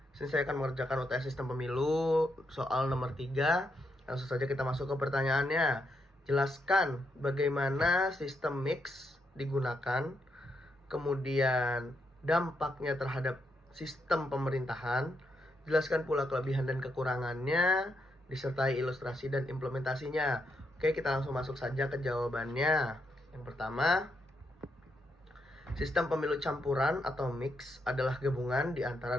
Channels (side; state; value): both; normal; correlation 0.80